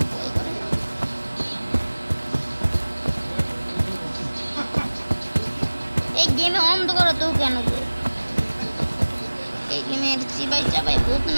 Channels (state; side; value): inverted; both; correlation -1.00